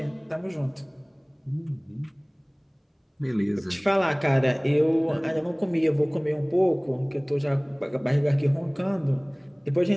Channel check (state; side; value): identical; both; correlation 1.00